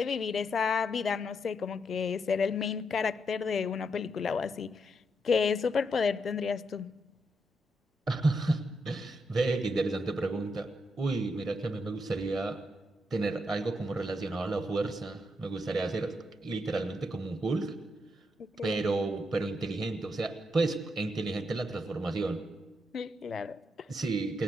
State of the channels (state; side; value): normal; both; correlation 0.80